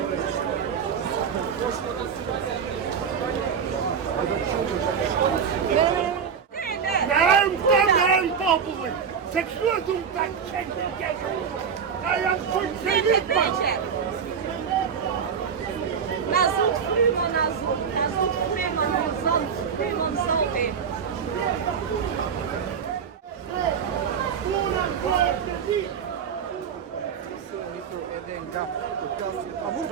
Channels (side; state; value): left; quieter; 6.9 dB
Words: Në populli, se kështu e du të qenë në keshë, na janë funksionit ma. Na zot frymon, na zot frymon, na zot frymon zote. A mund